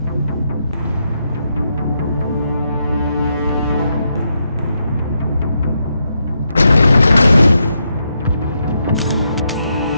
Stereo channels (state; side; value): inverted; both; correlation -0.81